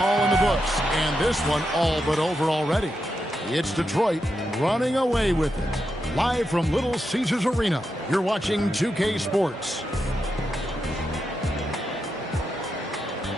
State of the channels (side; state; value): both; normal; correlation 0.86